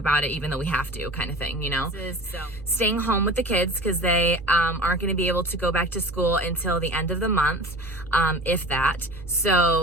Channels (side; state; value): left; noise; hum, 20 dB below the sound